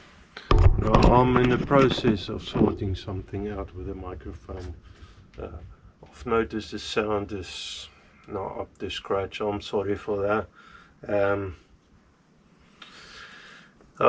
I'm in the process of sorting something out with the microphone. I've noticed the sound is not up to scratch. I'm sorry for that.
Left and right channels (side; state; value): both; identical; correlation 1.00